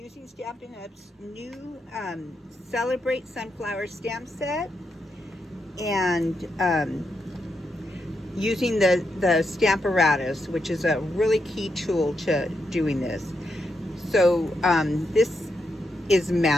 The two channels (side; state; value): both; normal; correlation 0.83